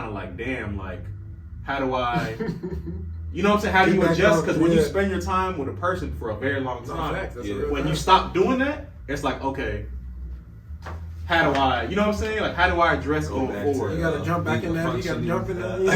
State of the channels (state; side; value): identical; both; correlation 1.00